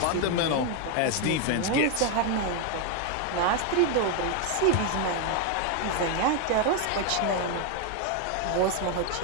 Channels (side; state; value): both; different; correlation 0.01